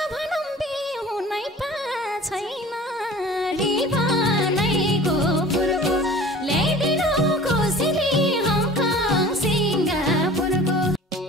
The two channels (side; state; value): both; normal; correlation 0.43